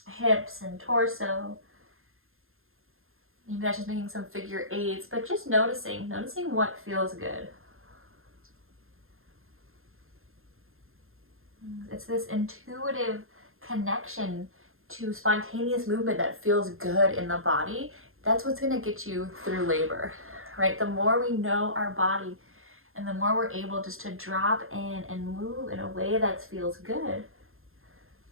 hips and torso. Maybe that's just making some figure eights, but just noticing what feels good. It's this intuitive connection to spontaneous movement that feels good in the body. That's what's going to get you through labor, right? The more we know our body and the more we're able just to drop in and move in a way that feels good,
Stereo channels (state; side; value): late; left; 0.61 ms